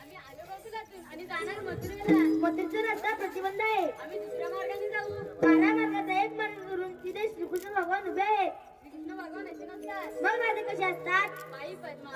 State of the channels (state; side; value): identical; both; correlation 1.00